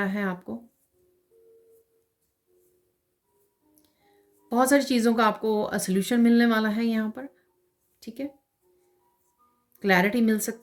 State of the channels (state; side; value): identical; both; correlation 1.00